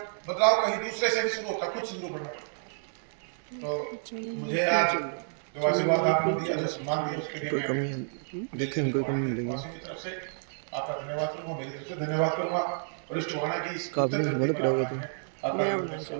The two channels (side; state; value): left; silent; digital silence